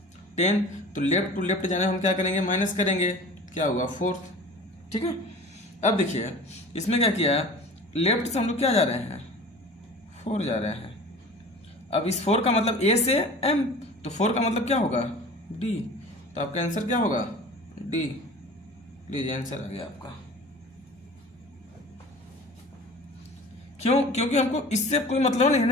10। तो लेफ्ट टू लेफ्ट जाने हम क्या करेंगे, माइनस करेंगे, क्या होगा 4। ठीक है, अब देखिए इसमें क्या किया, लेफ्ट से हम लोग क्या जा रहे हैं, 4 जा रहे हैं। अब इस 4 का मतलब ए से एम, तो 4 का मतलब क्या होगा, डी। तो आपका आंसर क्या होगा, डी। लीजिए आंसर आ गया आपका। क्यों, क्योंकि हमको इससे कोई मतलब नहीं है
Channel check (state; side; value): normal; both; correlation 0.40